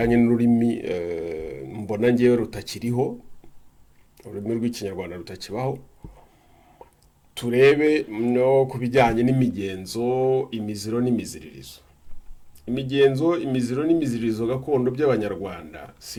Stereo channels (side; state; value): both; identical; correlation 1.00